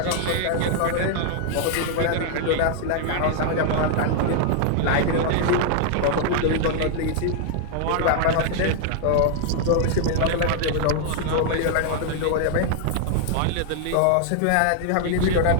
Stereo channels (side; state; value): both; different; correlation 0.00